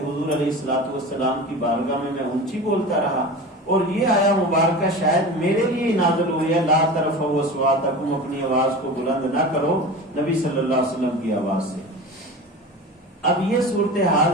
حضور علیہ الصلوۃ والسلام کی بارگاہ میں اونچی بولتا رہا۔ اور یہ آیہ مبارکہ شاید میرے لیے نازل ہوئی ہے، لا ترفعوا اصواتکم، اپنی آواز کو بلند نہ کرو نبی صلی اللہ علیہ وسلم کی آواز سے۔ اب یہ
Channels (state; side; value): normal; both; correlation 0.32